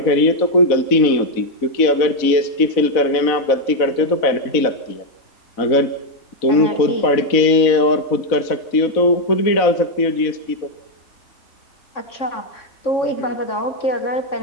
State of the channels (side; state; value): right; late; 4.0 ms